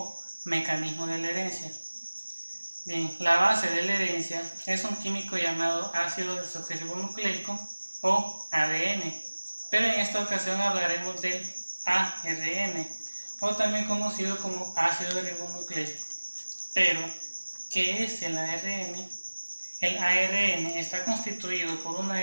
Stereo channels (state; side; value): inverted; both; correlation -1.00